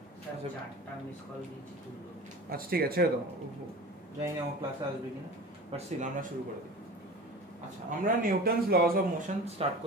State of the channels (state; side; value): normal; both; correlation 0.36